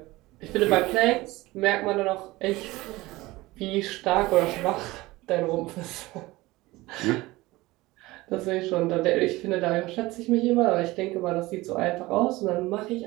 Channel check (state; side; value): quieter; left; 19.9 dB